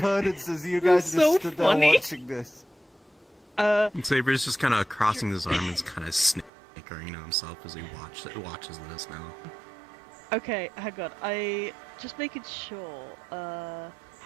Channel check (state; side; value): drops out; left; at 6.5 s